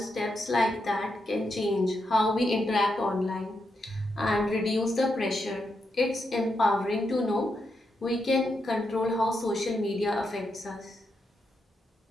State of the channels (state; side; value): normal; both; correlation 0.84